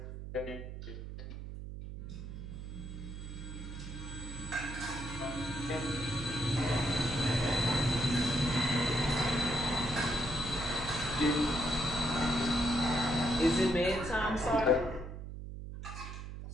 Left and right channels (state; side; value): noise; right; hum, 9 dB below the sound